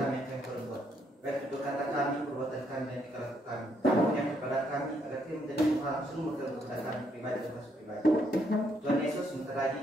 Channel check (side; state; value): both; normal; correlation 0.73